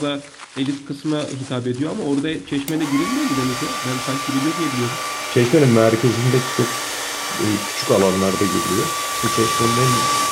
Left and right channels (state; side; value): identical; both; correlation 1.00